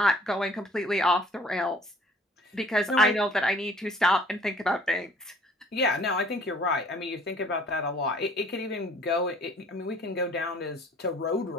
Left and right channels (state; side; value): normal; both; correlation 0.55